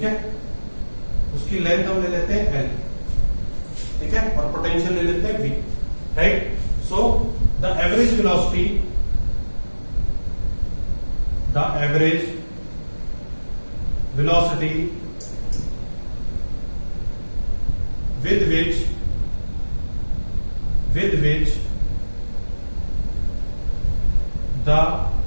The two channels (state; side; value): inverted; both; correlation -1.00